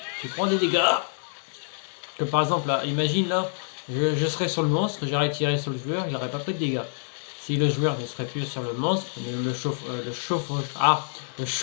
tu prends des dégâts. Que par exemple, là, imagine là, je serais sur le monstre, j'aurais tiré sur le joueur, il n'aurait pas pris de dégâts. Si le joueur ne serait plus sur le monstre, le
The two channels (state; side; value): silent; right; digital silence